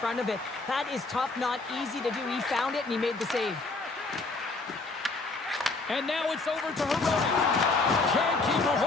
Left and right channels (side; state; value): right; quieter; 3.6 dB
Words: of it. That is tough, not easy to do. He found it, and he made the save. And now it's over to Hirota. Can't keep a